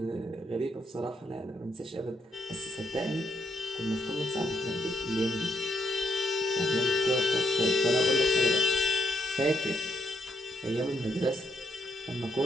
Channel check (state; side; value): normal; both; correlation 0.76